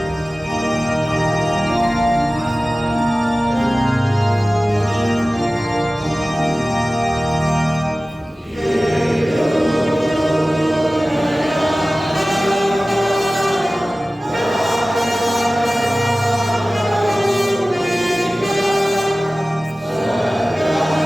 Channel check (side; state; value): both; normal; correlation 0.97